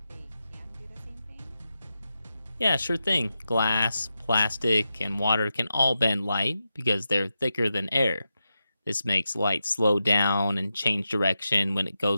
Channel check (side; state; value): both; inverted; correlation -0.89